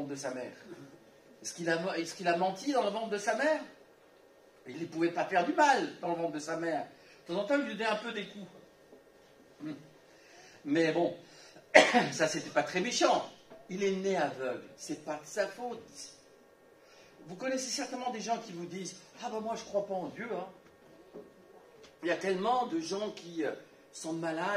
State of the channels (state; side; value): identical; both; correlation 1.00